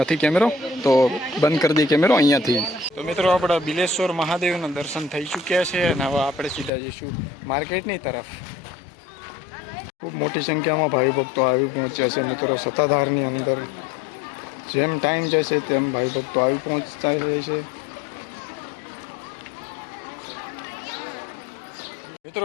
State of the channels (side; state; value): right; drops out; at 6.7 s